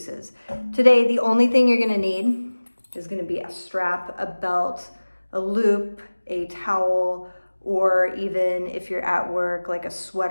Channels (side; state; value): both; inverted; correlation -1.00